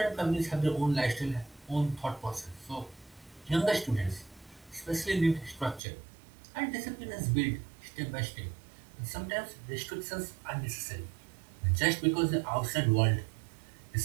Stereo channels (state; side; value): drops out; left; at 5.8 s